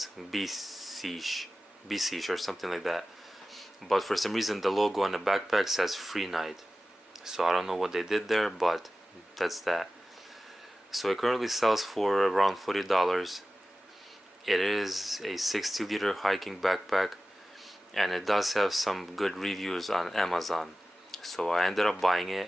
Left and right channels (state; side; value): normal; both; correlation 0.96